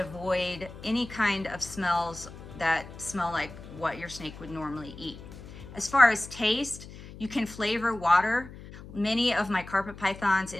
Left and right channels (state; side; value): noise; left; hum, 15 dB below the sound